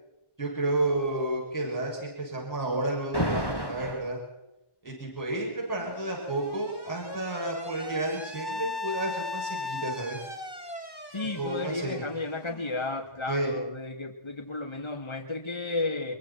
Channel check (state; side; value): late; right; 1.1 ms